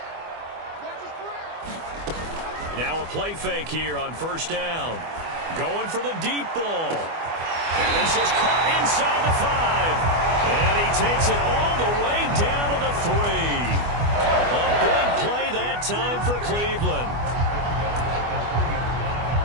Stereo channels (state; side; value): late; left; 24 ms